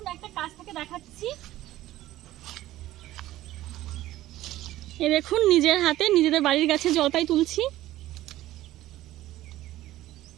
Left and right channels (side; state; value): left; quieter; 15.1 dB